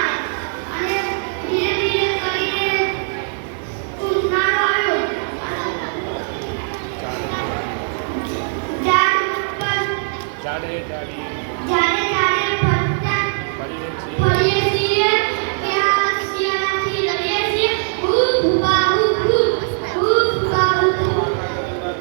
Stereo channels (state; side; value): silent; left; 66 dB below the other